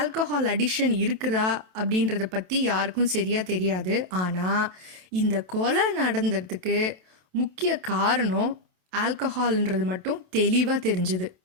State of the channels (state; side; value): late; left; 27 ms